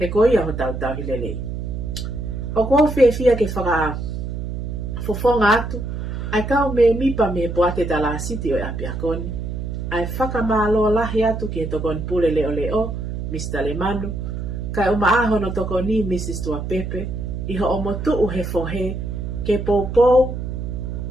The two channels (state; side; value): noise; right; hum, 5 dB below the sound